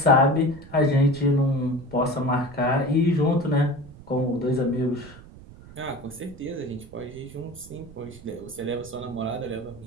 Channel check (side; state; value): right; noise; rumble, 19 dB below the sound